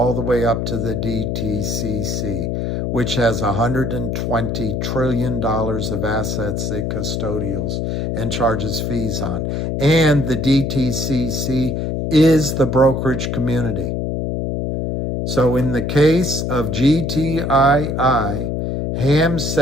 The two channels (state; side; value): noise; left; hum, 1 dB below the sound